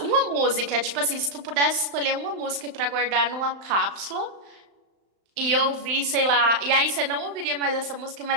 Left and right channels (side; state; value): left; late; 35 ms